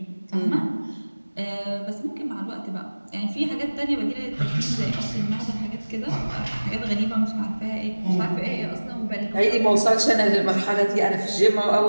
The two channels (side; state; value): both; inverted; correlation -1.00